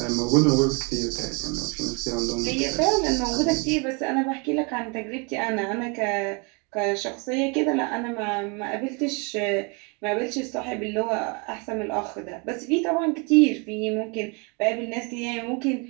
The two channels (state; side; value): quieter; left; 32.5 dB